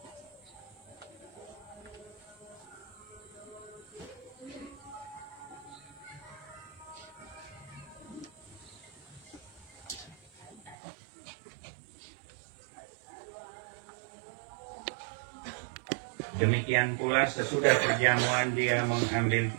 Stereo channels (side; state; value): left; drops out; at 10.8 s